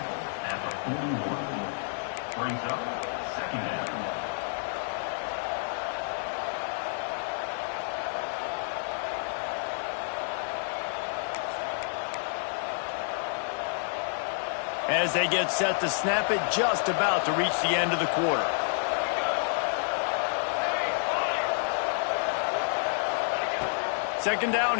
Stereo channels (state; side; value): silent; right; 58 dB below the other